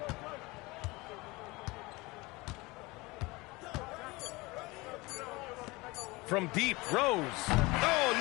From deep, Rose. Oh,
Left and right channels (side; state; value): right; quieter; 23.1 dB